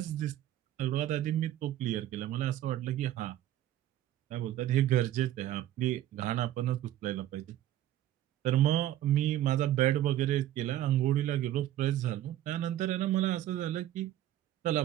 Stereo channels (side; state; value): left; quieter; 13.0 dB